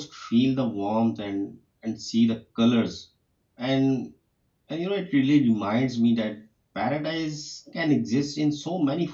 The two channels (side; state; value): both; identical; correlation 1.00